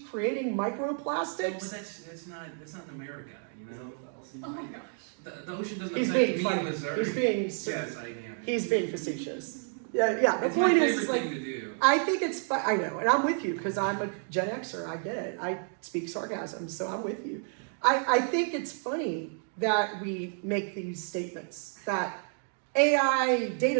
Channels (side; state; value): left; silent; 58 dB below the other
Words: creating But microplastics. that's not in America, you know. Oh my gosh. The ocean doesn't He's affect being me funny. in Missouri. He's being Yes, I am. He's being facetious. Yeah. The It's my point favorite is like, thing to do. I think it's fun. I know, and I'm with you because I'm a Gen Xer. I get it. I speak sarcasm, so I'm with you. I think it's funny that we make these statements that AI